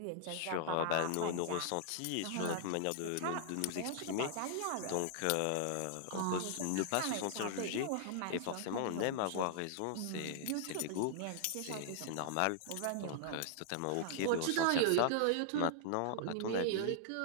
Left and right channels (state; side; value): different; both; correlation -0.01